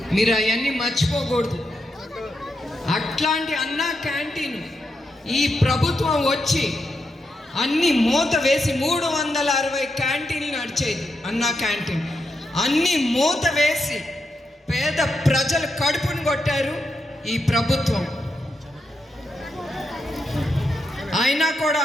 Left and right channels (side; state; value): both; normal; correlation 0.84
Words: మీరు అవన్నీ మర్చిపోకూడదు. అట్లాంటి అన్నా క్యాంటీన్ ఈ ప్రభుత్వం వచ్చి అన్ని మూత వేసి 360 క్యాంటీన్లు నడిచేది అన్నా క్యాంటీన్. అన్ని మూత వేసి పేద ప్రజలు కడుపును కొట్టారు ఈ ప్రభుత్వం. అయినా కూడా